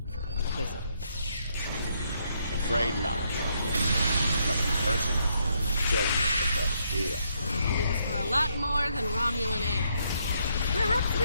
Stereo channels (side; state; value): both; inverted; correlation -0.74